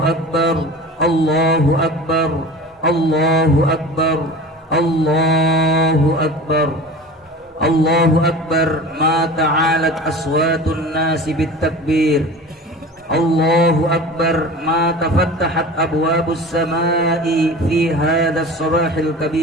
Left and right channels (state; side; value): normal; both; correlation 0.37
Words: Allahu Akbar, Allahu Akbar, Allahu Akbar, Allahu Akbar. Ma ta'alat aswatun nasi bit-takbir. Allahu Akbar. Ma tafattahat abwabus samai fi hadha as-sabahil